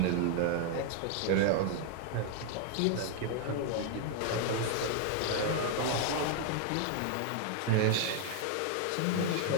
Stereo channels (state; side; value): different; both; correlation 0.00